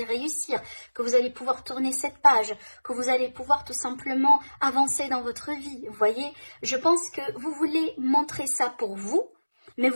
réussir, que vous allez pouvoir tourner cette page, que vous allez pouvoir tout simplement avancer dans votre vie. Vous voyez, je pense que vous voulez montrer ça pour vous, mais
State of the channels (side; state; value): both; inverted; correlation -1.00